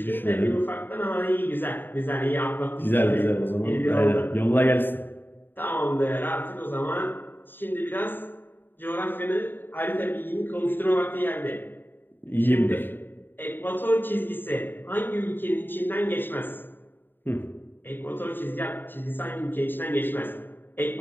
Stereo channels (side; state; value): right; late; 0.095 ms